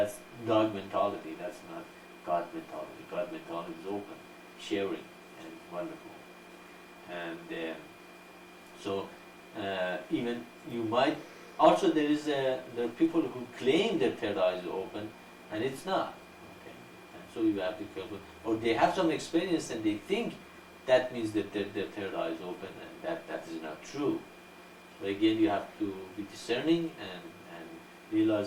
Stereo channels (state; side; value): identical; both; correlation 1.00